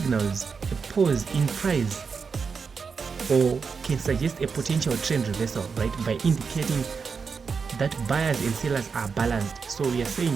a pause in price or can suggest a potential trend reversal, right, by indicating that buyers and sellers are balanced. So we are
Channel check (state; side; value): quieter; left; 5.5 dB